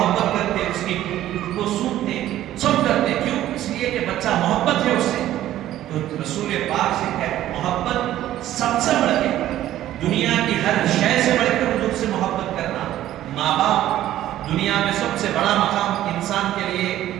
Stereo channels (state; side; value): quieter; left; 13.3 dB